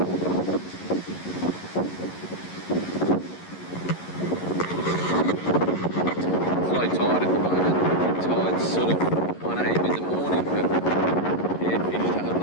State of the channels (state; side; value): late; right; 11 ms